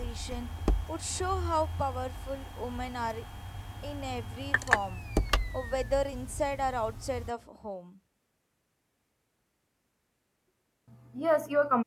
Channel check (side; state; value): both; identical; correlation 1.00